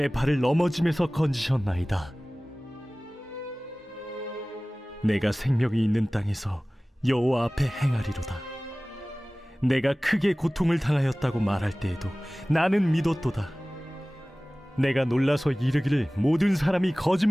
발을 넘어짐에서 건지셨나이다. 내가 생명이 있는 땅에서 여호와 앞에 행하리로다. 내가 크게 고통을 당하였다고 말할 때에도 나는 믿었도다. 내가 놀라서 이르기를 모든 사람이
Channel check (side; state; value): both; normal; correlation 0.98